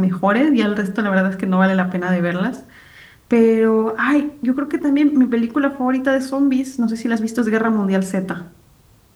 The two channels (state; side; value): identical; both; correlation 1.00